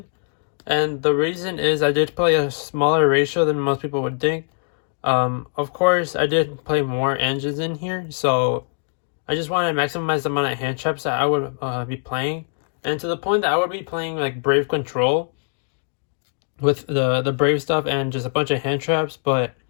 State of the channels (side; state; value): right; silent; 64 dB below the other